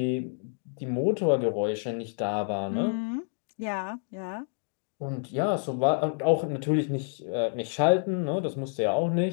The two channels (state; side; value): silent; right; 59 dB below the other